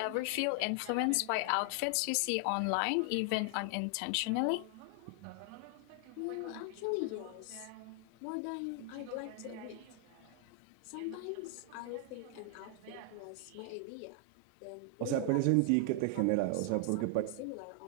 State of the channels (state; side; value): different; both; correlation 0.00